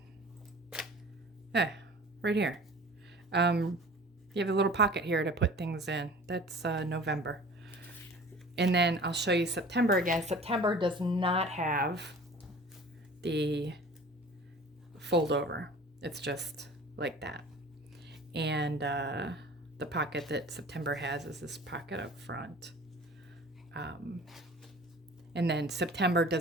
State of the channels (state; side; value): normal; both; correlation 0.43